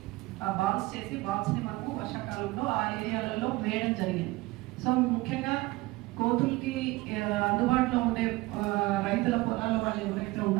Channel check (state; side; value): quieter; left; 20.8 dB